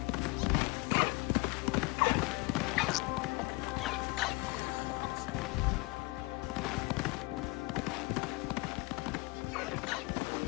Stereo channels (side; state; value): right; quieter; 25.5 dB